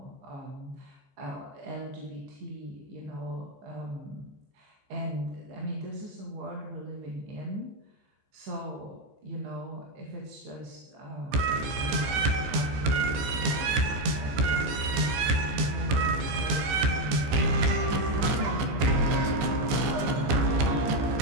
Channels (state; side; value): late; left; 15 ms